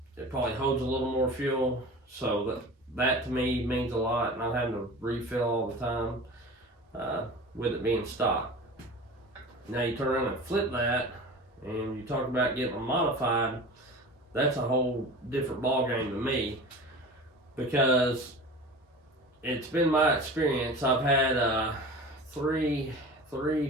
It probably holds a little more fuel, so that to me means a lot, not having to refill all the time with it being stock. Now you turn around and flip that, and you talk about getting them modified. That's a whole different ballgame to me, because it's been my experience. I've had three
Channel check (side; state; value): both; normal; correlation 0.36